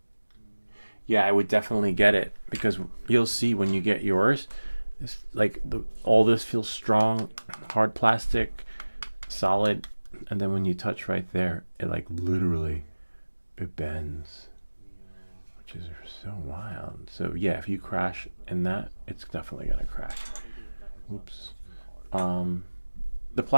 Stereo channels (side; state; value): both; inverted; correlation -1.00